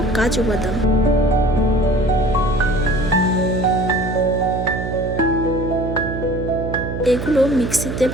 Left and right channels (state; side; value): noise; right; hum, 5 dB below the sound